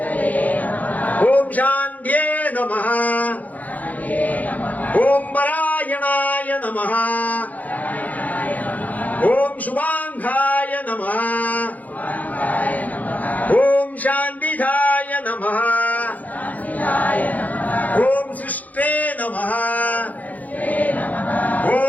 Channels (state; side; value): late; right; 0.078 ms